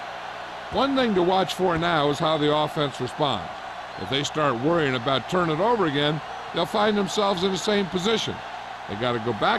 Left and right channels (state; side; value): identical; both; correlation 1.00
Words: One thing to watch for now is how the offense responds. If they start worrying about turning it over again, they'll find themselves in the same position. They got to go